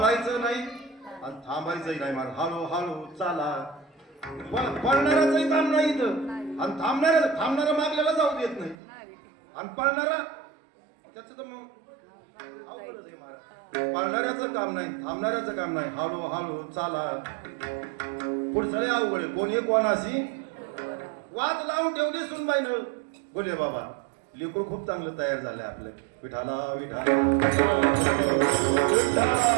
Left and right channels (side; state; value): left; drops out; at 8.8 s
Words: नाही आणि थांबायचंही नाही. मला हळू हळू चाला. पळणाराचंही काम नाही इथं आणि थांबणारा मागल्याला जाऊ देत नाही आणि पळणारा त्याचं तर मग अवघडच आहे महाराज. पळणाऱ्याचं काम नाही थांबणाऱ्याचं काम नाही. हळू हळू चाला. पुढचं लय अवघड आहे. कोणी कोणाशी वाद लावून ठेवली सुनबाईनं. बोले बाबा लेकरू खूप चांगलं तयार झालंय आपलं. विठाला विठाला